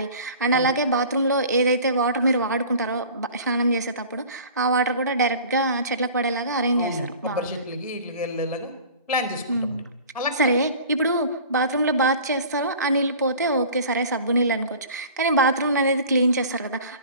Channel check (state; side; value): inverted; both; correlation -0.43